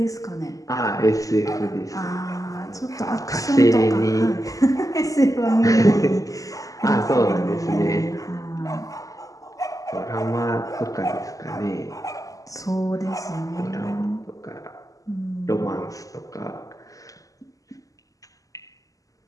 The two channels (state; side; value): late; right; 0.17 ms